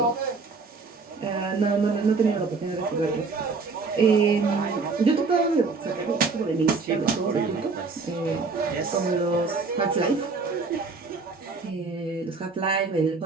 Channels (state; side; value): quieter; left; 4.3 dB